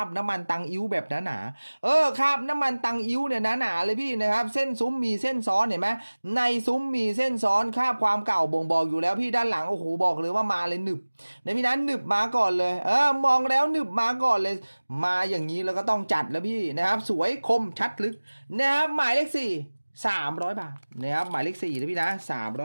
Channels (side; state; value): both; inverted; correlation -1.00